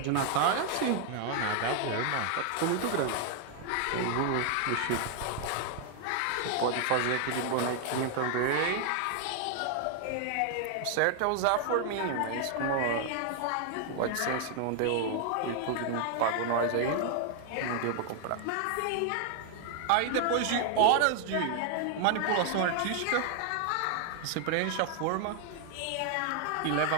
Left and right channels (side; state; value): both; different; correlation 0.00